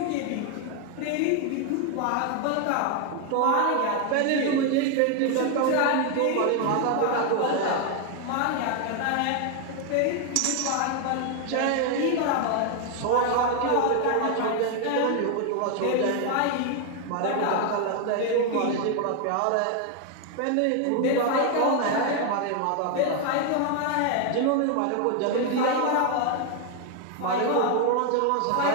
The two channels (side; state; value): both; different; correlation 0.01